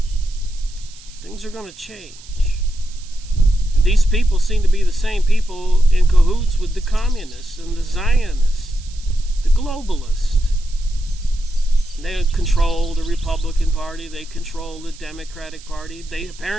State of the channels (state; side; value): noise; right; hiss, 21 dB below the sound